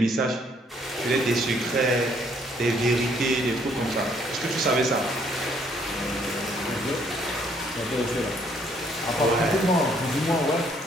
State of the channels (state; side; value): normal; both; correlation 0.66